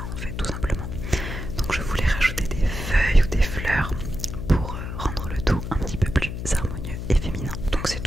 en fait, tout simplement. Donc je voulais rajouter des feuilles ou des fleurs pour rendre le tout un petit peu plus harmonieux et féminin. Donc c'est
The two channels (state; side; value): noise; left; hum, 6 dB below the sound